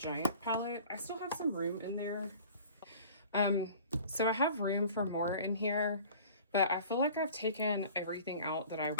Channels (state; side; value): inverted; both; correlation -0.45